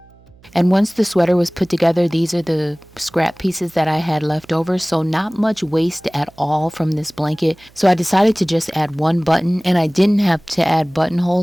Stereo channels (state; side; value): noise; right; hum, 28 dB below the sound